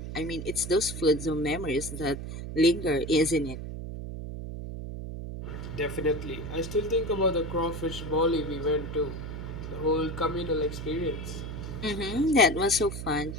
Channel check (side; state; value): right; noise; hum, 7 dB below the sound